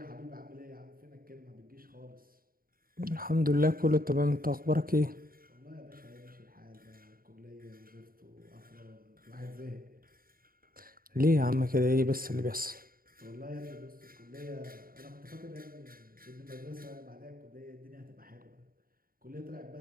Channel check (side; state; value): left; late; 0.42 ms